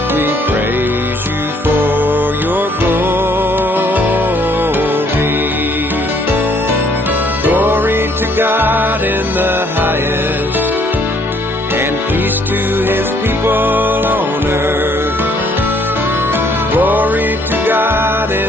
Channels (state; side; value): normal; both; correlation 0.64